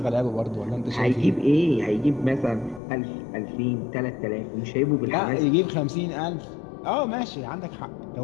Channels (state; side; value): drops out; right; at 2.8 s